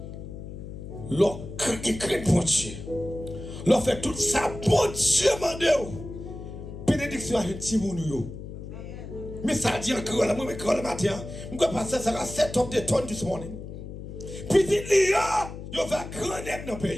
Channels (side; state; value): left; noise; hum, 10 dB below the sound